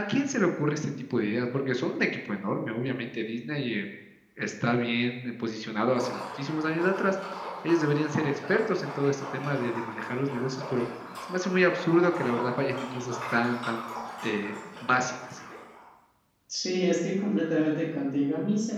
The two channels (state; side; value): identical; both; correlation 1.00